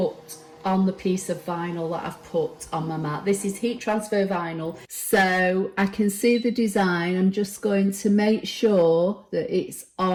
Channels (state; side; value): identical; both; correlation 1.00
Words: on the piece of vinyl that I've put on my mat. This is heat transfer vinyl, so I can see the design. I'm just going to make sure that it's